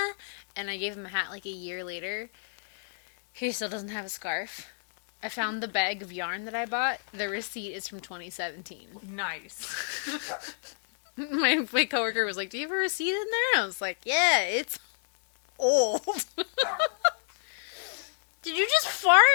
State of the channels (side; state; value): right; silent; digital silence